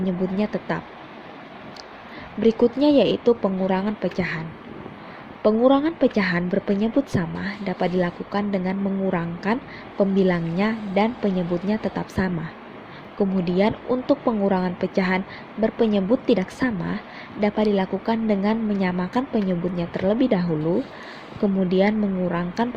tetap. Berikutnya yaitu pengurangan pecahan. Pengurangan pecahan berpenyebut sama dapat dilakukan dengan mengurangkan pembilangnya dan penyebutnya tetap sama. Kemudian untuk pengurangan pecahan berpenyebut tidak sama dapat dilakukan dengan menyamakan penyebutnya terlebih dahulu, kemudian mengurangkan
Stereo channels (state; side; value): identical; both; correlation 1.00